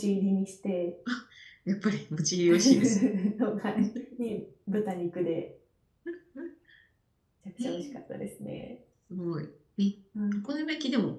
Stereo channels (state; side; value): identical; both; correlation 1.00